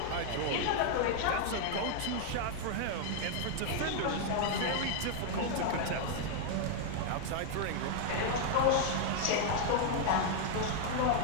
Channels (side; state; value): both; different; correlation 0.00